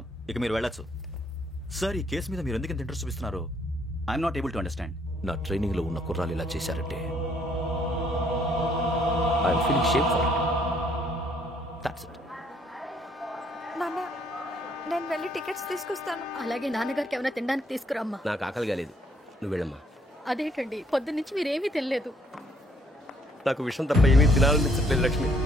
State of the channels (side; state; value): both; normal; correlation 0.66